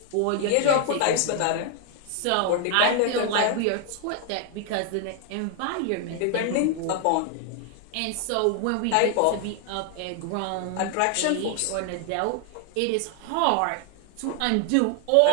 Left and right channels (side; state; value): both; different; correlation 0.00